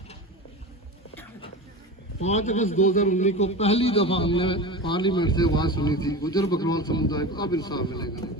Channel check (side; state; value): both; normal; correlation 0.28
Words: 5 अगस्त 2019 को पहली दफा हमने पार्लियामेंट से आवाज सुनी थी, गुजर बकरवाल समुदाय को अब इंसाफ मिलेगा।